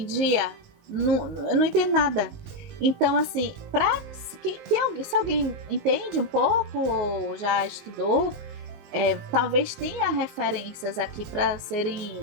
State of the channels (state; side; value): late; left; 19 ms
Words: eu não entendo nada. Então, assim, se alguém entende um pouco ou já estudou, talvez tenha referências aqui para